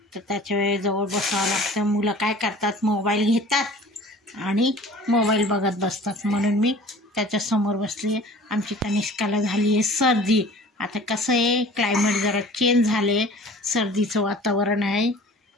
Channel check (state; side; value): normal; both; correlation 0.45